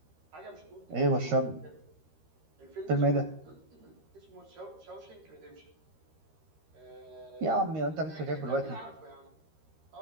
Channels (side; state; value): left; late; 13 ms